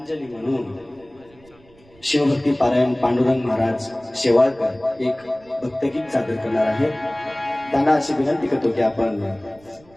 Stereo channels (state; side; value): noise; right; rumble, 28 dB below the sound